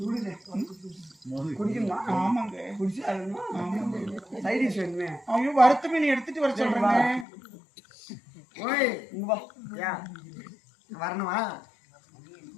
குடிக்கணுமா ஆமாங்க குடிச்சு ஆமாங்க சைடிஷ் வேணுமே ஐயோ வறுத்த மீன் எடுத்துட்டு வர சொல்றேங்க ஓய் இங்க வா ஏன் வரணுமா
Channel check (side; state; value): right; drops out; at 7.2 s